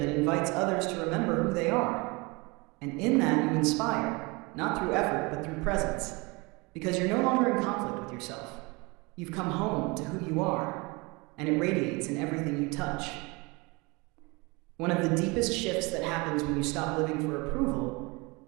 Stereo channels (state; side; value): quieter; left; 26.6 dB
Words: invites others to remember who they are. And in that you inspire, not through effort, but through presence. Because you're no longer in conflict with yourself. You've come home to who you are, and it radiates in everything you touch. One of the deepest shifts that happens when you stop living for